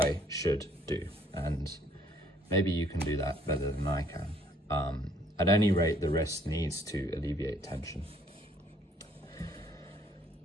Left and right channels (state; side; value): normal; both; correlation 0.63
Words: should do, and maybe you can do that better than I can. At any rate, the wrist needs to alleviate tension.